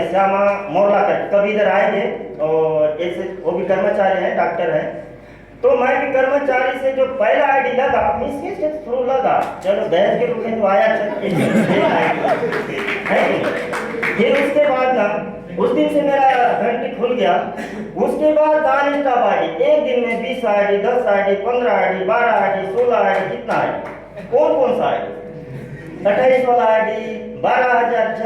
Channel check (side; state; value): both; identical; correlation 1.00